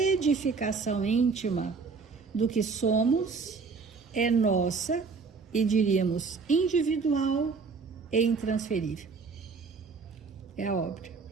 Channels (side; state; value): left; quieter; 4.9 dB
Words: íntima do que somos é nossa e diríamos individual e intransferível. É a obra.